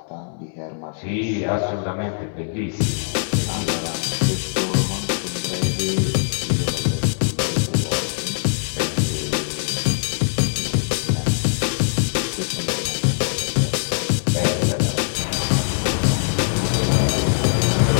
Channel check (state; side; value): silent; right; 64 dB below the other